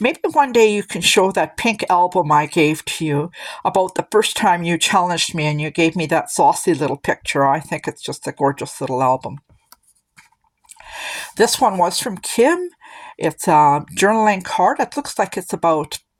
one day you can show that pink album I gave to you about the first time you challenged me and you gave me that saucy little picture. I think it's just a gorgeous little album. This one was from Kim. It's a journaling card. It looks like it's about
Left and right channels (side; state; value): both; identical; correlation 1.00